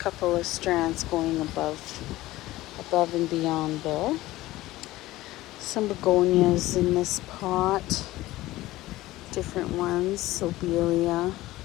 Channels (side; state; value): right; quieter; 17.3 dB